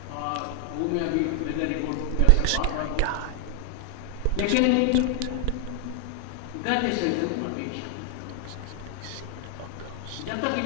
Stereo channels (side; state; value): both; different; correlation 0.00